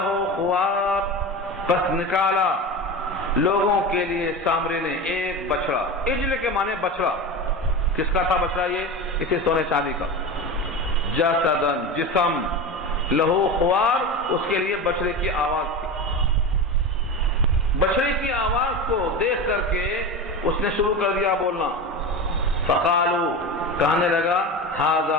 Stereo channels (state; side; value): normal; both; correlation 0.25